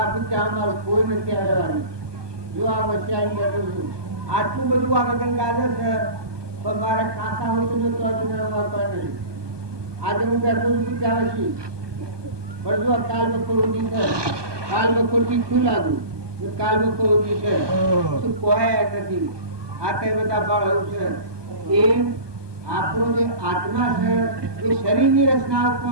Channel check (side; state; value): left; late; 1.2 ms